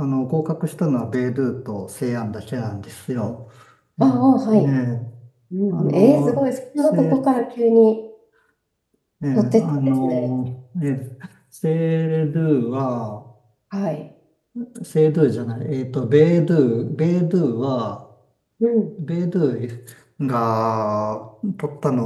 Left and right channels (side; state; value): both; identical; correlation 1.00